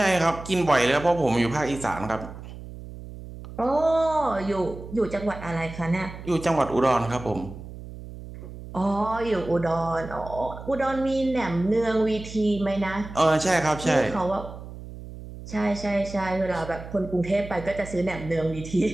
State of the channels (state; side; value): noise; right; hum, 13 dB below the sound